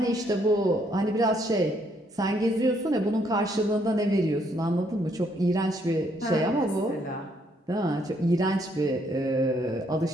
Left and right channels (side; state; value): both; normal; correlation 0.70